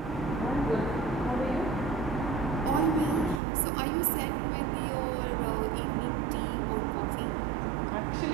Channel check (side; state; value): left; drops out; at 3.4 s